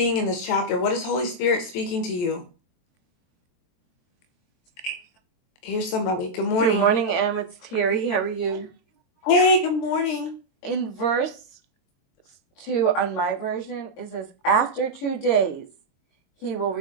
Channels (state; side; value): late; right; 23 ms